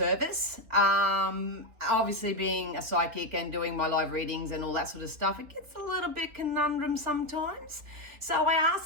Obviously being a psychic and doing my live readings and all that sort of stuff, it gets a little bit conundrum sometimes. So I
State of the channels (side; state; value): left; late; 3.2 ms